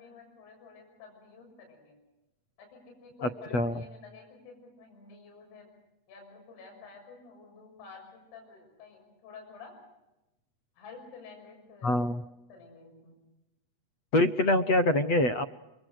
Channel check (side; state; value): right; late; 8.2 ms